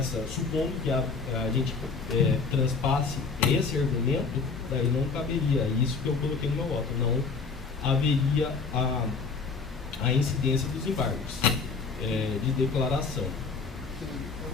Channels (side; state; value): right; quieter; 4.9 dB